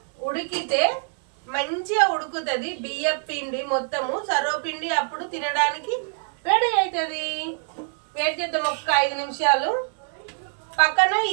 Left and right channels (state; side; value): silent; left; 62 dB below the other